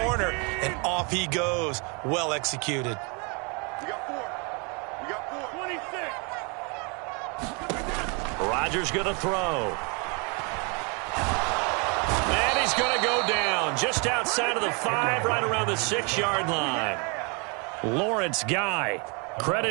and off he goes. Well executed. Rodgers going to throw. And he's going to go down just outside of the 5, right around the 6-yard line. Lawrence Guy,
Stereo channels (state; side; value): quieter; left; 33.1 dB